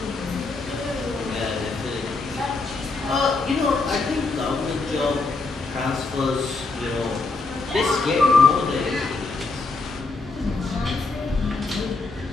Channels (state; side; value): quieter; right; 3.7 dB